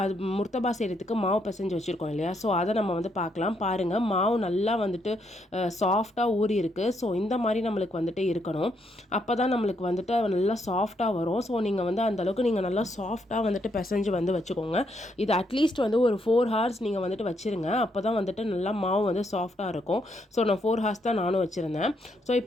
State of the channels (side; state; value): both; normal; correlation 0.76